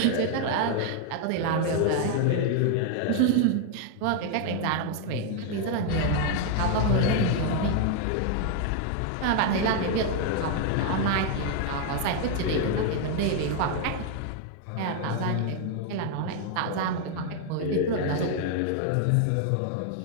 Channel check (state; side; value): different; both; correlation 0.00